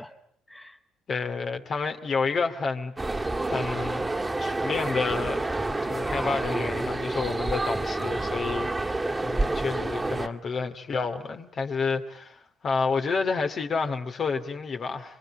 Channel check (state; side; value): normal; both; correlation 0.89